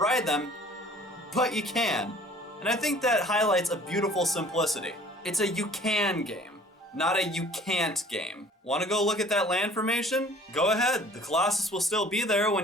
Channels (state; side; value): normal; both; correlation 0.51